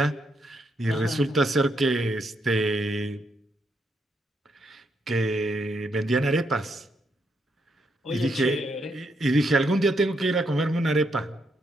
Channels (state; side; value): normal; both; correlation 0.78